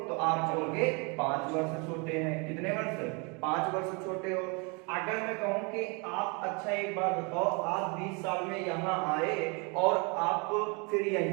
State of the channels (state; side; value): quieter; left; 31.9 dB